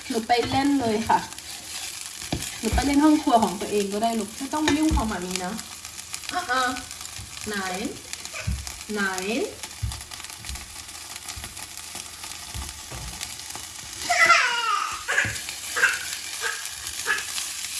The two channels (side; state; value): both; identical; correlation 1.00